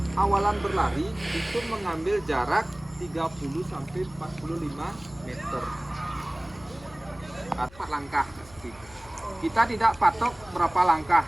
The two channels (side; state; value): left; noise; hum, 22 dB below the sound